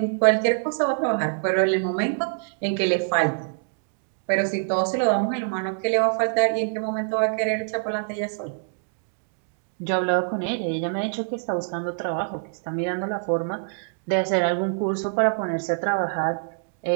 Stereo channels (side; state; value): left; silent; digital silence